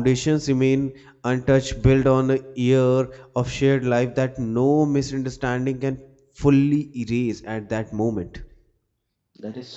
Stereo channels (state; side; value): identical; both; correlation 1.00